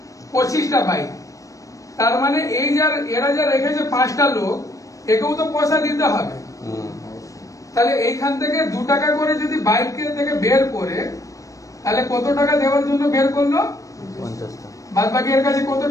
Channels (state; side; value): late; right; 0.16 ms